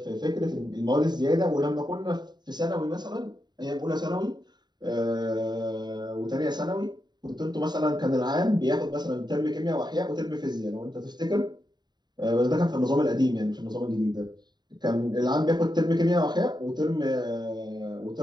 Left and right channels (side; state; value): left; late; 0.21 ms